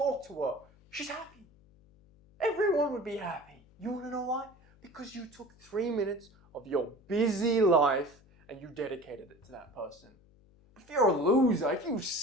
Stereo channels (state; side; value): noise; left; hum, 30 dB below the sound